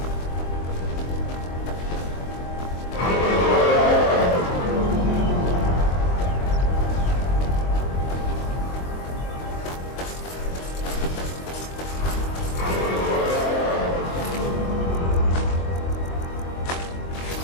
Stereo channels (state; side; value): late; right; 23 ms